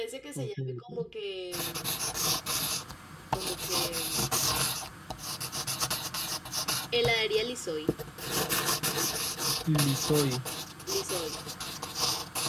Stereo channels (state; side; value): identical; both; correlation 1.00